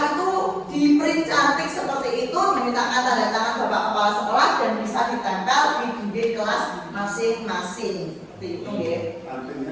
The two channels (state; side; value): identical; both; correlation 1.00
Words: itu di print cantik seperti itu, dimintakan tanda tangan Bapak Kepala Sekolah dan bisa ditempel di dinding kelas masing-masing. Seperti itu, ya. Artinya